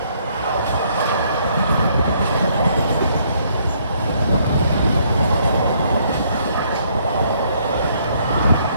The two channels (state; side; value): inverted; both; correlation -0.68